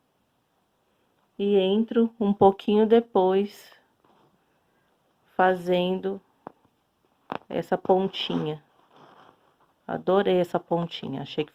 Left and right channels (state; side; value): identical; both; correlation 1.00